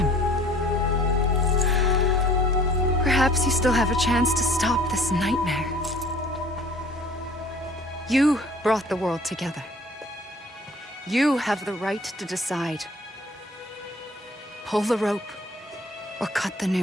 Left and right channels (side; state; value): both; normal; correlation 0.51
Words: Perhaps you still have a chance to stop this nightmare. You brought the world together. You have the right to decide. Pull the rope or cut the